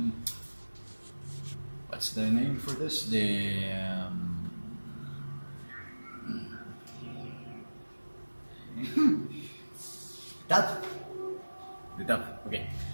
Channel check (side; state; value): both; inverted; correlation -1.00